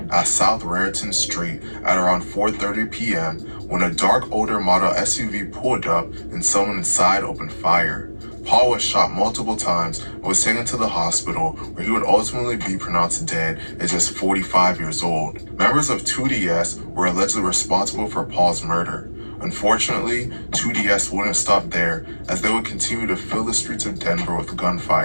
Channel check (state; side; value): inverted; both; correlation -1.00